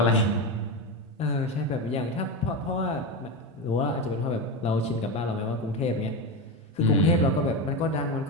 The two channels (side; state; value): both; normal; correlation 0.17